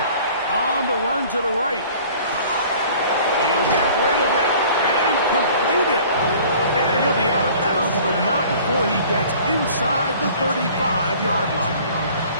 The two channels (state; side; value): inverted; both; correlation -0.49